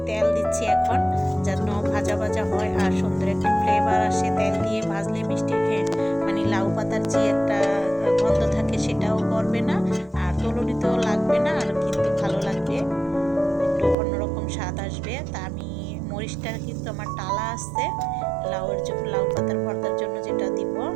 তেজি একটা গন্ধ থাকে সেটাও করবে না, আর তলুনিতেও লাগবে না, আর কিন্তু ভালো লাগবে, একটু অন্যরকম স্বাদ আসবে। তা আমি মরিচটা কিন্তু আমার টালা আছে, লাউ পাতার ভর্তার জন্য যেটা দিব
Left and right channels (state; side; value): drops out; left; at 14.0 s